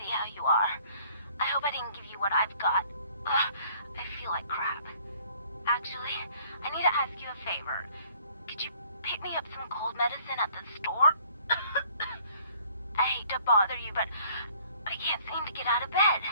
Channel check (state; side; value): inverted; both; correlation -0.58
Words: see how you are. I hope I didn't give you what I've got. I feel like crap. Actually, I need to ask you a favor. Could you pick me up some cold medicine at the store? I hate to bother you, but I can't seem to get out of bed.